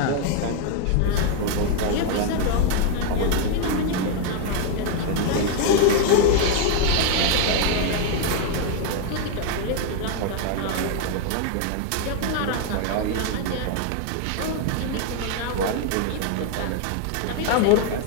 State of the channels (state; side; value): different; both; correlation 0.00